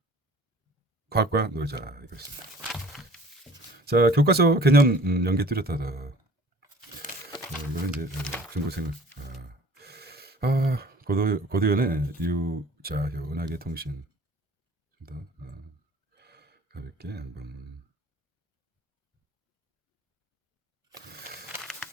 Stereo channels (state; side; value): normal; both; correlation 0.49